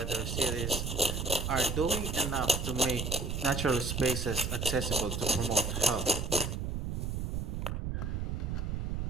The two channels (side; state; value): right; noise; rumble, 2 dB below the sound